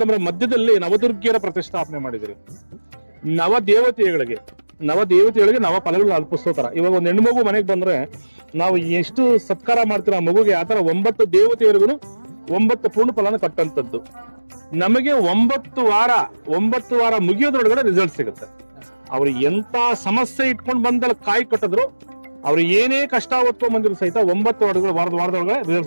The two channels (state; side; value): inverted; both; correlation -1.00